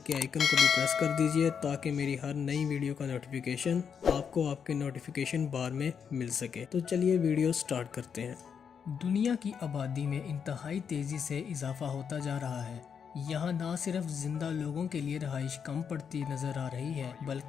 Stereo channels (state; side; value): quieter; right; 7.0 dB